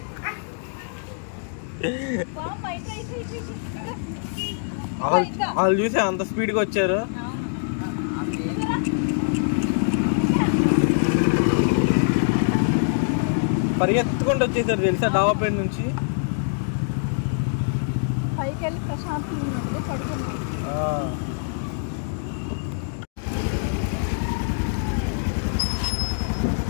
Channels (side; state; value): right; silent; digital silence